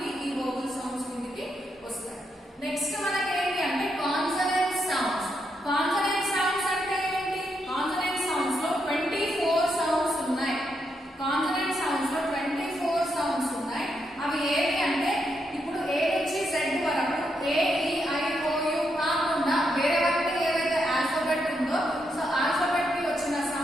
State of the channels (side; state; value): both; normal; correlation 0.81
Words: ఈ వోవెల్ సౌండ్స్ కిందకి వస్తాయి. నెక్స్ట్ మనకి ఏంటి అంటే కాన్సనెంట్ సౌండ్స్. కాన్సనెంట్ సౌండ్స్ అంటే ఏంటి? కాన్సనెంట్ సౌండ్స్ లో 24 సౌండ్స్ ఉన్నాయి. కాన్సనెంట్ సౌండ్స్ లో 24 సౌండ్స్ ఉన్నాయి. అవి ఏవి అంటే ఇప్పుడు ఏ నుంచి జెడ్ వరకు ఏ ఈ ఐ ఓ యు కాకుండా వేరే వరకు ఏవైతే ఆల్ఫాబెట్ ఉందో సో ఆల్ఫాబెట్ కి వచ్చిన